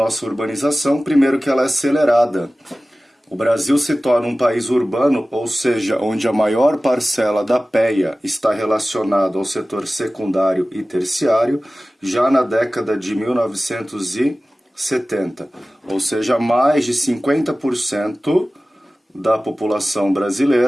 urbanização. Primeiro, que ela é acelerada. O Brasil se torna um país urbano, ou seja, onde a maior parcela da PEA está relacionada ao setor secundário e terciário, já na década de 1970. Ou seja, mais de 50% da população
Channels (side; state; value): both; normal; correlation 0.97